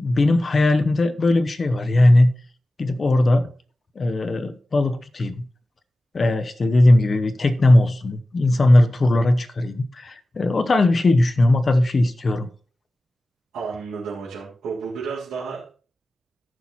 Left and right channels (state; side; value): normal; both; correlation 0.96